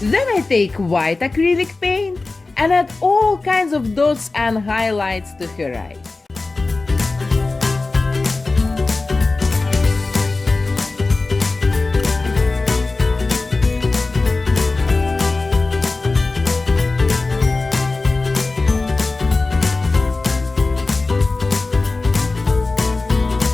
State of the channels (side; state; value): right; quieter; 3.5 dB